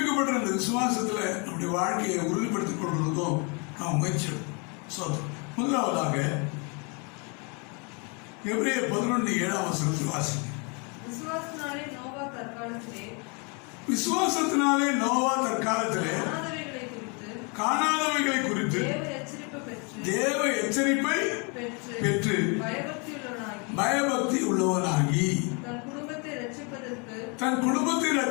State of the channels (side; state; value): right; quieter; 33.5 dB